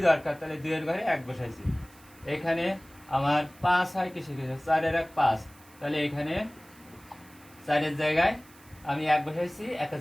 দরকার, তাহলে 2 এর ঘরে 1 বসাইছি। এখানে আমার 5 হয় কিসে কিসে, 4 এর 1 5, তাহলে এখানে 4-এর জায়গায় আমি 1 বসাইছি,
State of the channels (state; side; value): noise; right; hiss, 25 dB below the sound